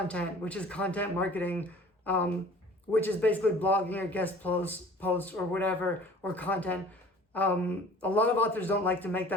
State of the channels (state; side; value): normal; both; correlation 0.48